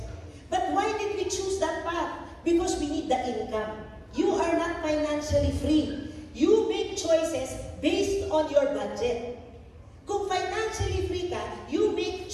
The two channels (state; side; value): identical; both; correlation 1.00